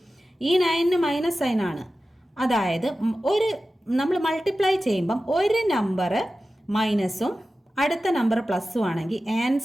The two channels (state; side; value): normal; both; correlation 0.94